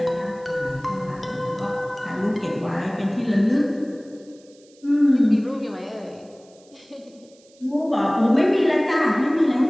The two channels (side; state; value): right; noise; hiss, 30 dB below the sound